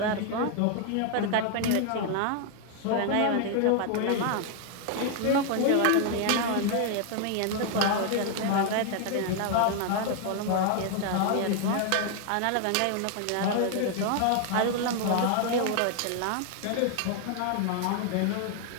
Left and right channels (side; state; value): both; different; correlation 0.00